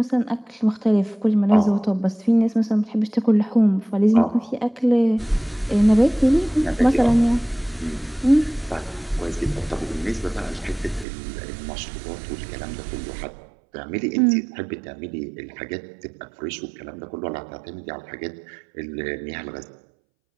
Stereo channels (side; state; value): left; drops out; at 11.1 s